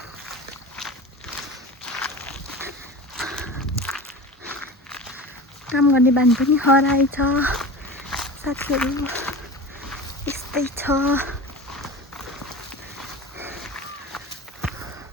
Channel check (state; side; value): normal; both; correlation 0.33